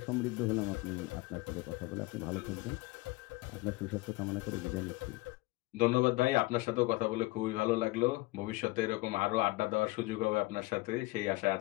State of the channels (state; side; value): quieter; right; 21.8 dB